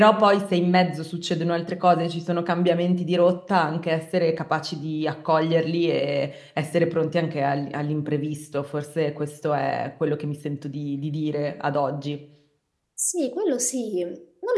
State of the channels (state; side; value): identical; both; correlation 1.00